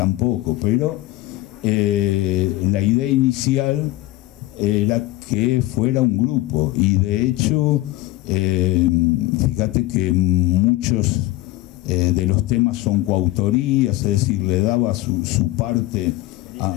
poco, pero la idea inicial era que fuera un grupo, y de hecho fíjate que muchos de los temas son coautorías, es decir, le daba su parte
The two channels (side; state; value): right; quieter; 17.9 dB